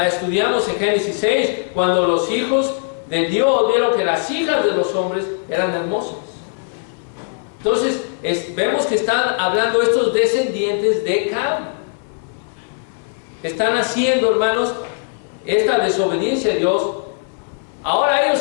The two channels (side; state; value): right; silent; 66 dB below the other